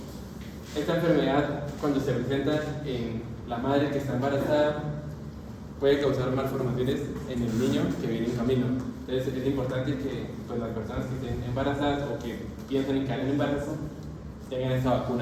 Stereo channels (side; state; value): both; identical; correlation 1.00